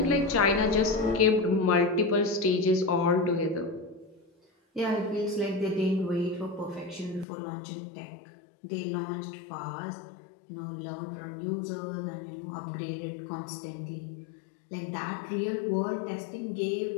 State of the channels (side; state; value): right; drops out; at 7.2 s